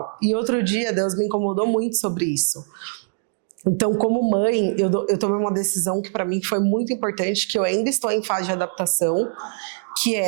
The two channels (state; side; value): silent; left; 64 dB below the other